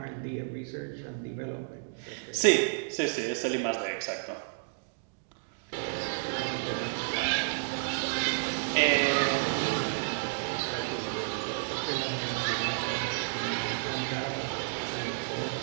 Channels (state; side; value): silent; left; digital silence